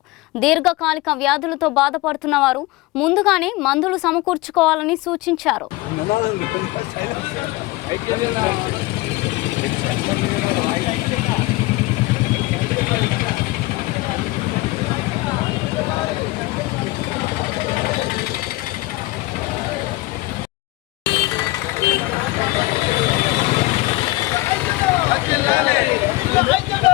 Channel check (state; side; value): quieter; right; 20.6 dB